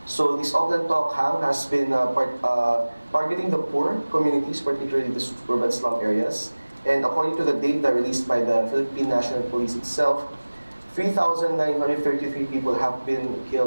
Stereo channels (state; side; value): inverted; both; correlation -1.00